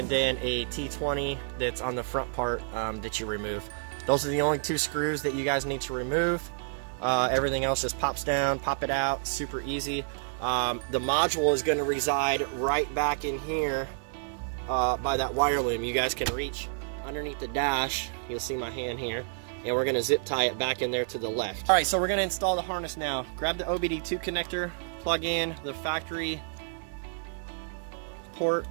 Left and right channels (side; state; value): left; silent; digital silence